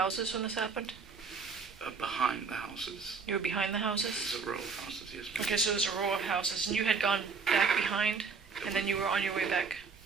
when this happened? Behind the houses. You were behind the houses? There's a row of houses, yes, ma'am. Okay, so it was a row of houses, and you had gone back behind, and then you were on your way back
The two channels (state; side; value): quieter; left; 5.2 dB